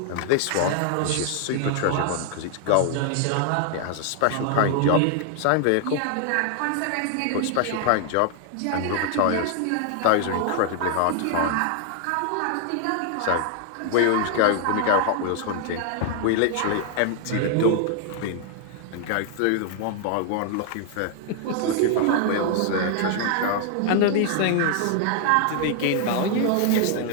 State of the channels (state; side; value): different; both; correlation 0.00